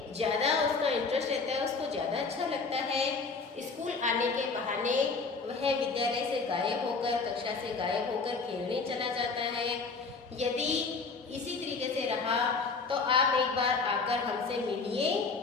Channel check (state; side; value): quieter; right; 4.4 dB